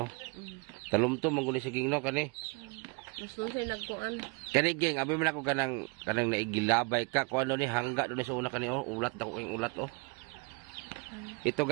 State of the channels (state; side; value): quieter; left; 30.1 dB